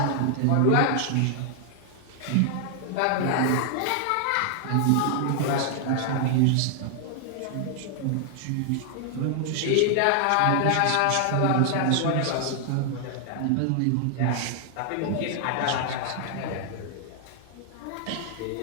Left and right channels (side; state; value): both; different; correlation 0.00